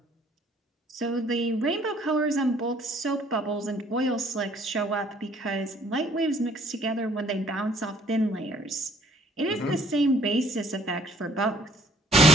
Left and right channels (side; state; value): both; normal; correlation 0.61